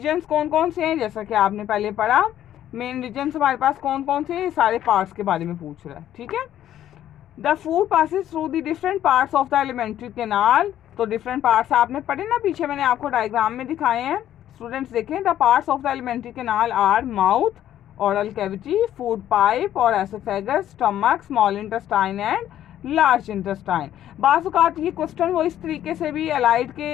कौन कौन से हैं, जैसा कि आपने पहले पढ़ा, मेन रीजन्स हमारे पास कौन कौन से हैं, सारे पार्ट्स के बारे में पूछ रहा है। ठीक है, the food passes through the different parts of the alimentary canal. तो डिफरेंट पार्ट्स आपने पढ़े ना, पीछे मैंने आपको डायग्राम में दिखाए हैं। स्टूडेंट्स देखें, the parts of the alimentary canal are mouth, oral cavity, food pipe और oesophagus, stomach, small intestine and large intestine. बाज़ औक़ात ये क्वेश्चन वो इस तरीके से भी अलाइड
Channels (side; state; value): right; quieter; 11.7 dB